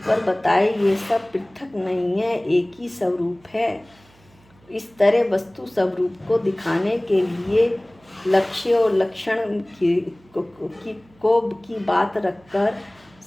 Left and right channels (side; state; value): right; noise; hum, 30 dB below the sound